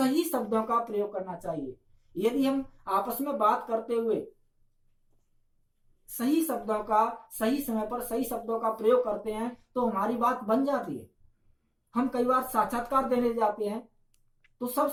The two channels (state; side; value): identical; both; correlation 1.00